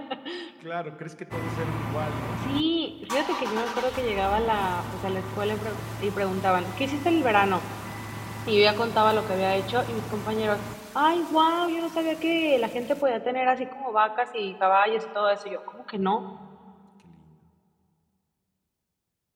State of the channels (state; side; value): identical; both; correlation 1.00